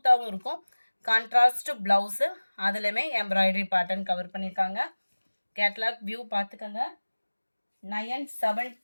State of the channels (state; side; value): inverted; both; correlation -1.00